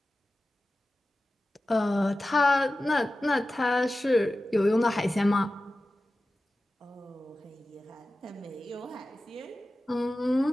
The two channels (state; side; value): normal; both; correlation 0.95